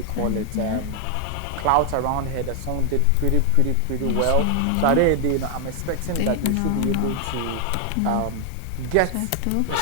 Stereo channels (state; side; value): different; both; correlation 0.00